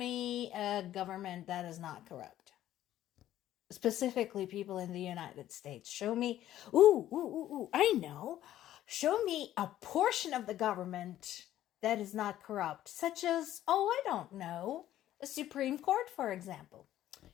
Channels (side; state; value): right; quieter; 12.8 dB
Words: a government that is not corrupt. Specifically, people in the United States. Show me, I know. Show me a portion of the government that is not corrupt, such as, I don't know, a Supreme Court, for example.